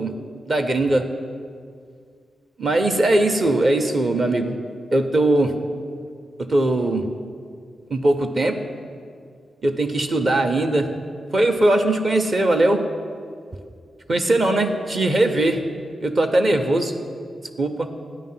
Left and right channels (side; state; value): both; normal; correlation 0.88